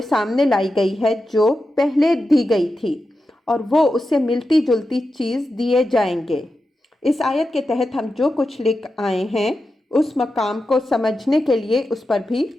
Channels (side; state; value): both; normal; correlation 0.90